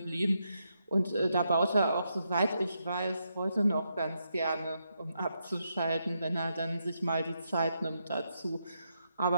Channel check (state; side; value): inverted; both; correlation -0.82